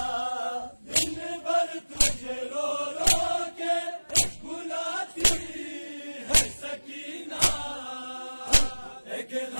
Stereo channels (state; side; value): inverted; both; correlation -1.00